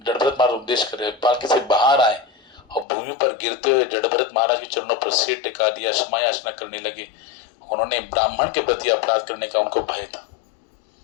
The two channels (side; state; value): right; drops out; at 2.9 s